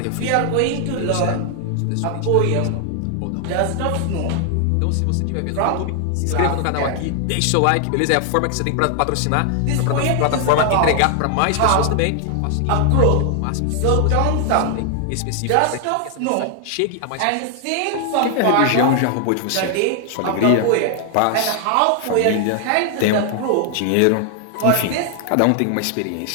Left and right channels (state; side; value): different; both; correlation 0.00